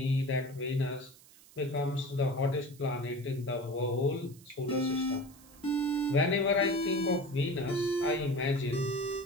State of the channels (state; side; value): noise; right; hiss, 24 dB below the sound